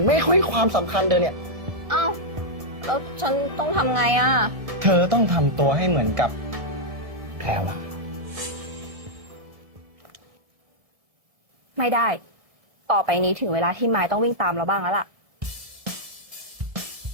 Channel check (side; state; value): left; late; 1.7 ms